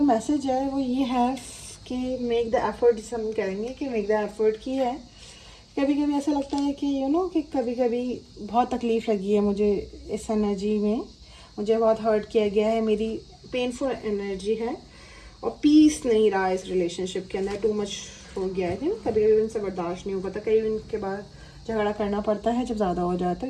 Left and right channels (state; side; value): identical; both; correlation 1.00